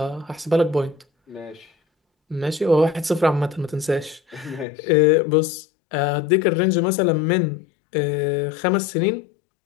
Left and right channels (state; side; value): drops out; right; at 4.7 s